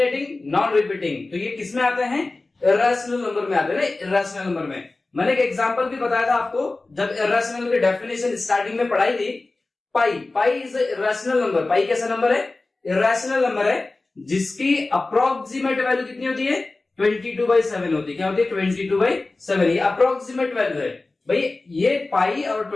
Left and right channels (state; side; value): quieter; right; 3.3 dB